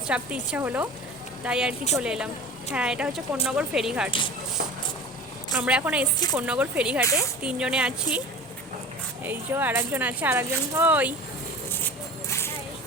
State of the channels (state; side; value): normal; both; correlation 0.37